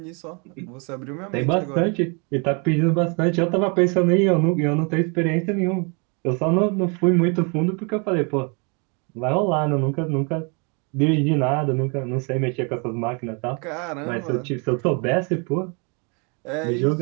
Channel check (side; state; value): left; quieter; 34.2 dB